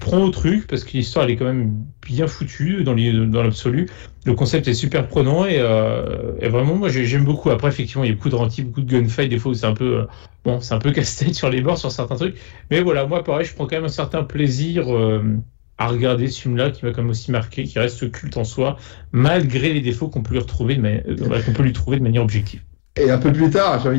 au truc parce que l'histoire elle est quand même bien foutue dans l'absolu. Le concept est super prenant et vraiment, moi j'aime beaucoup. Après, effectivement, il y a beaucoup de ralenti, beaucoup de gunfight. Des fois où c'est un peu casse-tête sur les bords sur certains trucs. Mais voilà, moi pareil, je prends quand même un certain plaisir à regarder ce film-là, qui m'a quand même aussi marqué, qui reste culte en soi, malgré les défauts qu'on peut lui trouver de manière objective. Et un peu plus tard, j'ai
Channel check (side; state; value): right; silent; digital silence